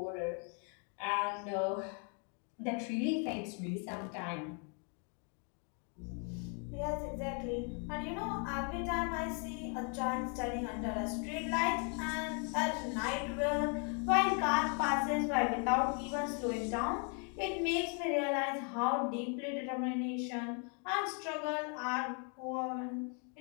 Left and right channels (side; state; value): right; quieter; 38.7 dB